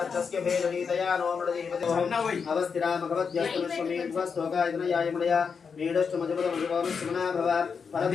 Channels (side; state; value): right; quieter; 5.9 dB